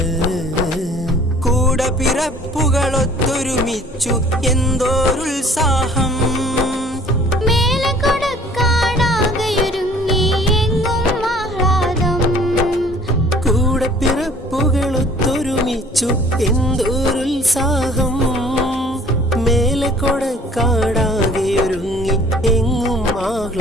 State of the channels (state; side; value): normal; both; correlation 0.52